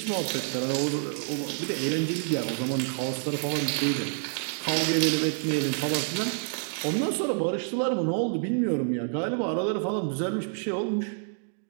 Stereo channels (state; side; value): silent; left; 59 dB below the other